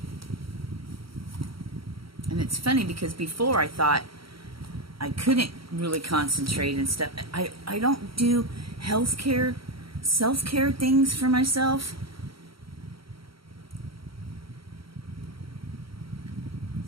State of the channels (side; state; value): left; late; 0.75 ms